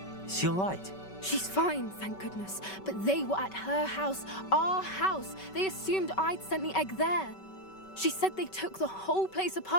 Is she all right? She's fine, thank goodness. But they were at her house, our house. They assumed I'd sent the egg there. She said they took the whole place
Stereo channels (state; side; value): late; right; 5.2 ms